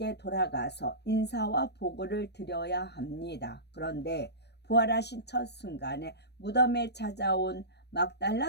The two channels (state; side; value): late; right; 0.49 ms